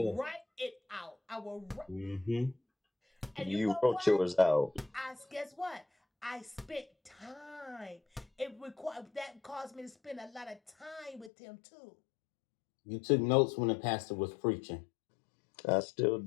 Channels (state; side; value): drops out; right; at 11.3 s